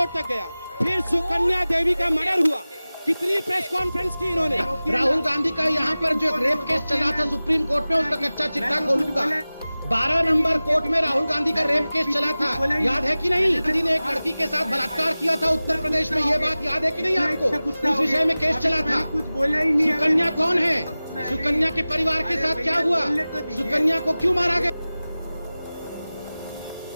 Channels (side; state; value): both; inverted; correlation -0.97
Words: तक गया। फिर सुकन्या देवी का मर्डर हुआ। कितनी प्रेस कॉन्फ्रेंस की इन्होंने। राहुल गांधी का यहाँ पर जो रेप केस चला था सुप्रीम कोर्ट में, उसका कच्चा चिट्ठा खोलूंगा। 12 नंबर कोर्ट में राहुल गांधी का रेप केस चला था, याद है कि नहीं? गांधी ने एक लड़की के साथ बलात्कार किया था उत्तर प्रदेश में, ये बात याद है कि नहीं आपको? उस विषय में केस चला था। सुकन्या कौन है? सुकन्या के परिवार के साथ क्या हुआ? सुकन्या को क्यों मारा गया?